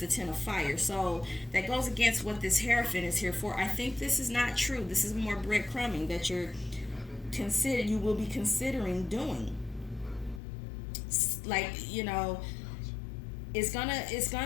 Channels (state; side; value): drops out; right; at 10.4 s